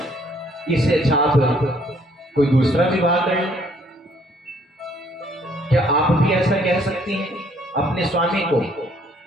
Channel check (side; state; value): both; normal; correlation 0.64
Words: इससे अच्छा आप कोई दूसरा विवाह कर लें। क्या आप भी ऐसा कह सकती हैं अपने स्वामी को